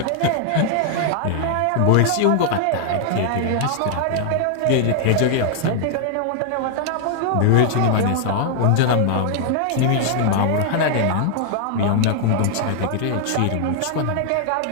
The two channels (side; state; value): both; different; correlation -0.01